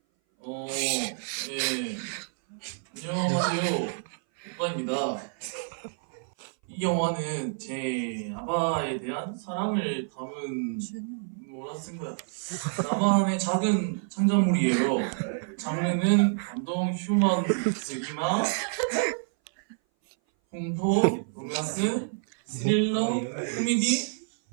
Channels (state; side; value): silent; left; 58 dB below the other